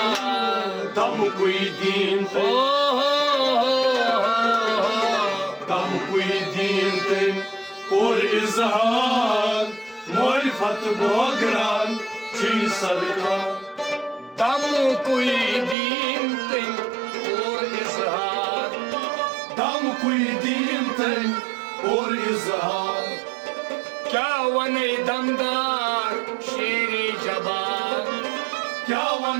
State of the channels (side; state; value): left; drops out; at 15.8 s